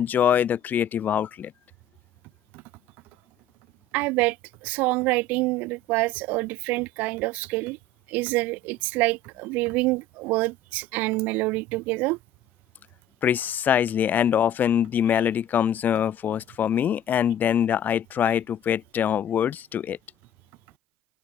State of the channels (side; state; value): both; normal; correlation 0.42